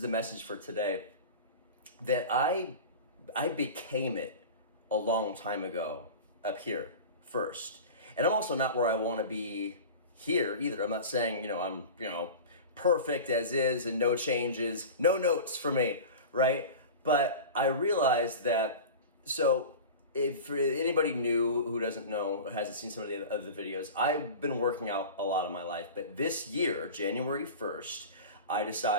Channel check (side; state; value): both; inverted; correlation -0.32